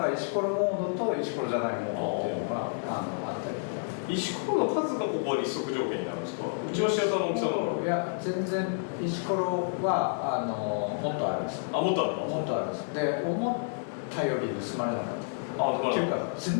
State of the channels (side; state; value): right; silent; digital silence